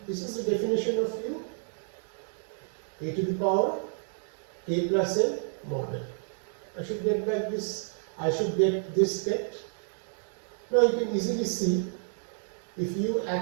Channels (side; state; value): left; silent; digital silence